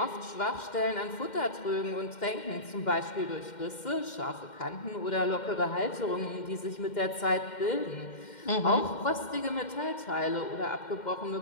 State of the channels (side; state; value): right; late; 2.1 ms